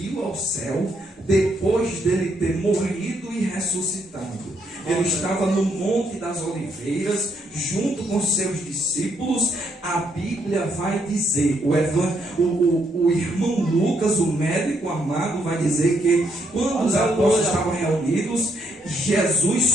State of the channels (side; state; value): both; normal; correlation 0.75